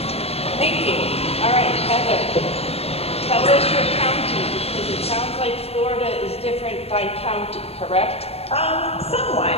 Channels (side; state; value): right; late; 0.29 ms